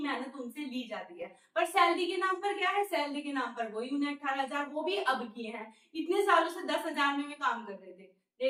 उनसे ली जाती है, पर सैलरी के नाम पर क्या है, सैलरी के नाम पर वही उन्हें 18,000 वो भी अब किए हैं। इतने सालों से 10,000 में काम कर रहे थे,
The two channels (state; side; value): identical; both; correlation 1.00